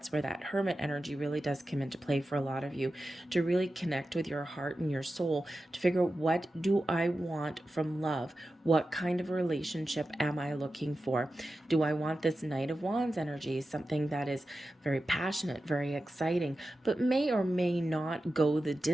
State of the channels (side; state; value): both; normal; correlation 0.92